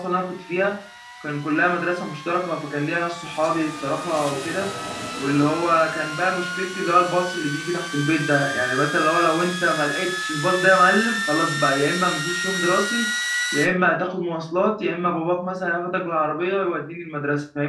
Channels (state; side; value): identical; both; correlation 1.00